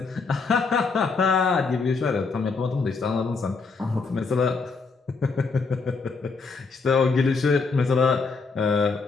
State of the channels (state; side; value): quieter; right; 4.5 dB